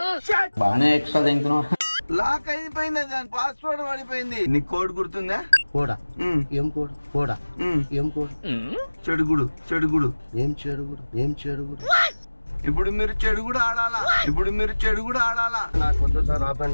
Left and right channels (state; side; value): inverted; both; correlation -1.00